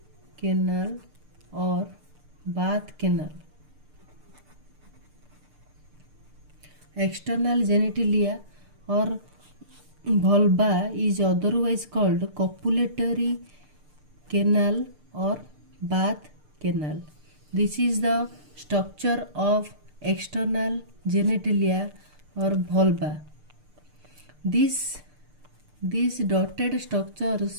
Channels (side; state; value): left; late; 6.7 ms